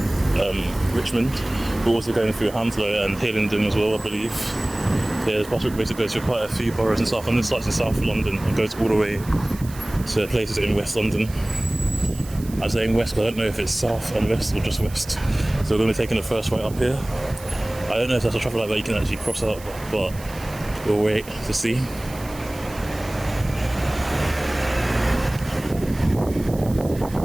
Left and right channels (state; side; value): noise; right; hiss, 18 dB below the sound